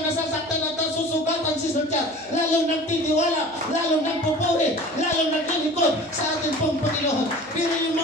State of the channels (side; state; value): right; noise; hum, 25 dB below the sound